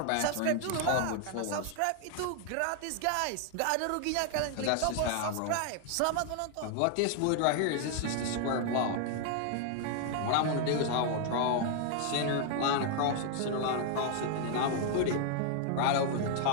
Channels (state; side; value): different; both; correlation 0.00